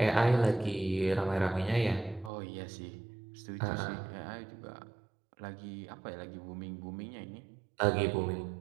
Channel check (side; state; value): left; drops out; at 2.3 s